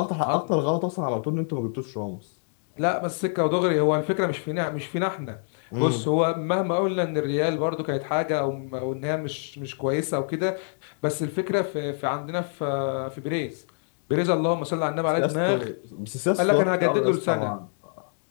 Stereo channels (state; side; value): silent; right; digital silence